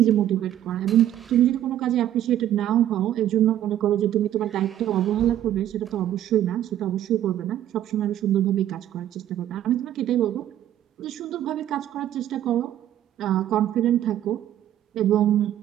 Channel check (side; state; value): left; quieter; 11.8 dB